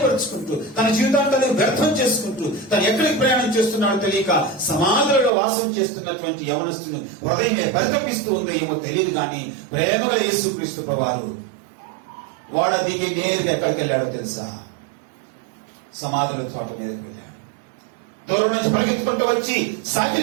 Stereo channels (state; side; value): drops out; left; at 5.3 s